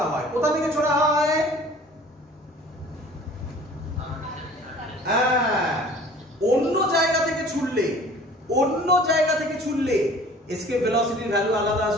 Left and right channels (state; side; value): normal; both; correlation 0.48